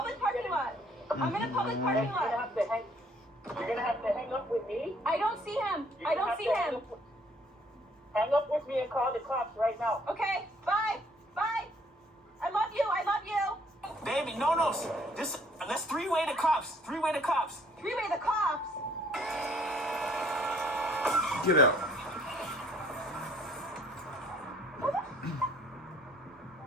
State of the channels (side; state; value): both; normal; correlation 0.61